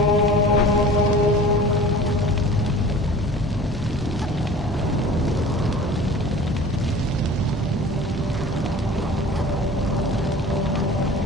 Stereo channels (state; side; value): normal; both; correlation 0.42